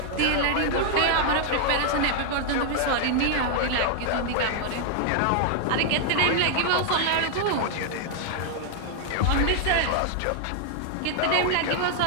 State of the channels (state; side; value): different; both; correlation 0.00